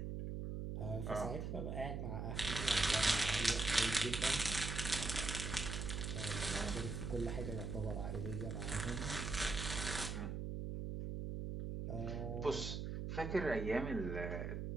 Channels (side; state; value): right; noise; hum, 3 dB below the sound